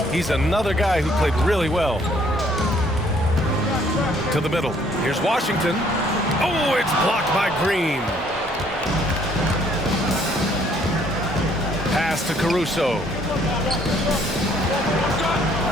he's another guy who played really well. To the middle. Here's Washington. Oh, it's blocked by Green. Pass to Caruso.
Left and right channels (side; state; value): both; normal; correlation 0.63